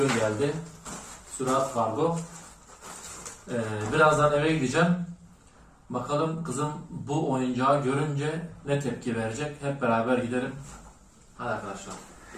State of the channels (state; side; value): identical; both; correlation 1.00